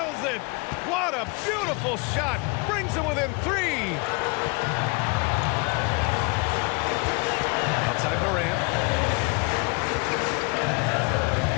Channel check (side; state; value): right; quieter; 30.3 dB